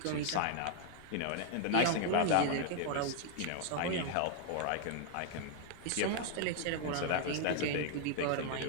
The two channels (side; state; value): both; different; correlation 0.00